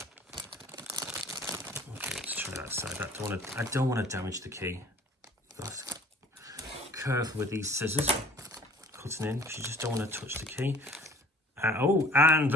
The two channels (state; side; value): normal; both; correlation 0.51